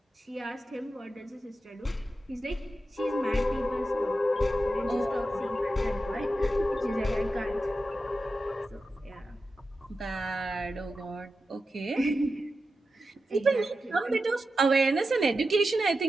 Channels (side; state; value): both; normal; correlation 0.91